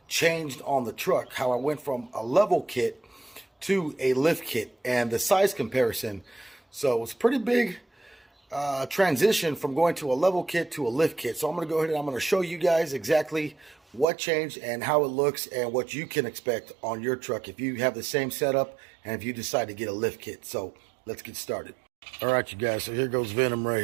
changed on the truck, how I went from a level kit to a lift kit, and the size comparison. So it's a pretty big transition from going to a level kit to a lift kit. So I'm going to go ahead and I'm going to show you guys exactly what changed and how it looks and what you can expect on your truck if you have the same setup and if you decide to get a lift kit. So let's get started. All right, you guys, so here goes Venom right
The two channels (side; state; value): left; drops out; at 14.1 s